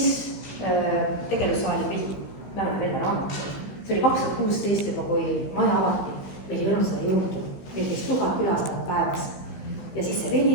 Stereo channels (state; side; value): late; right; 15 ms